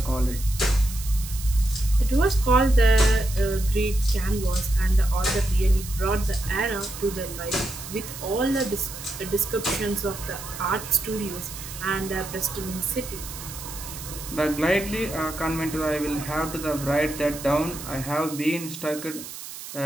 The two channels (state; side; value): noise; right; hiss, 11 dB below the sound